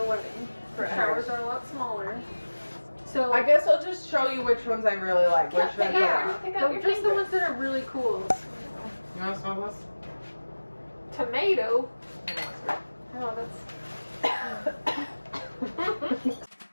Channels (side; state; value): both; inverted; correlation -1.00